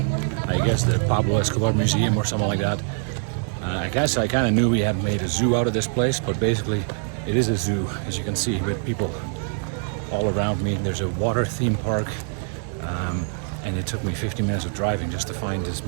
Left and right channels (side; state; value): left; silent; 63 dB below the other